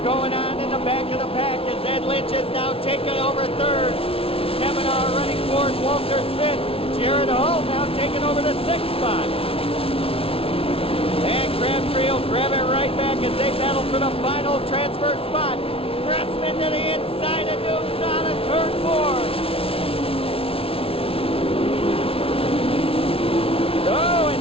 going on in the back of the pack as Ed Lynch is now taking over 3rd. Kemmenaugh running 4th, Walters 5th. Jared Hall now taking over the 6th spot. And Crabtree will grab it right back as they battle for the final transfer spot. Gressman to the inside of Dukes on a turn 4. Oh,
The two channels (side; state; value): right; late; 0.27 ms